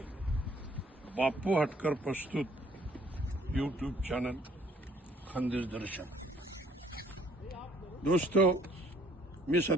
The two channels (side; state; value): both; normal; correlation 0.61